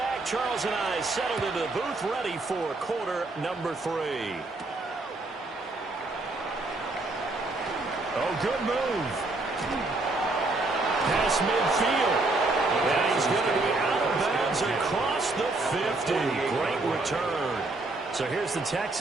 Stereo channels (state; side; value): quieter; left; 3.1 dB